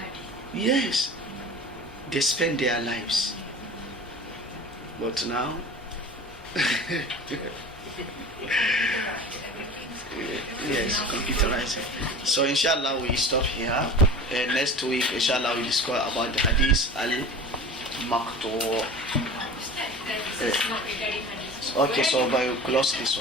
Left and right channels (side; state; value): both; normal; correlation 0.37